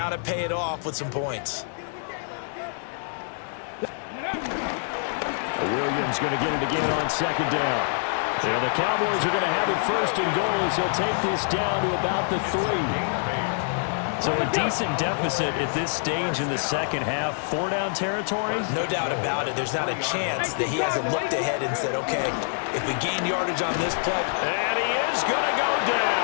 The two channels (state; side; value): silent; right; digital silence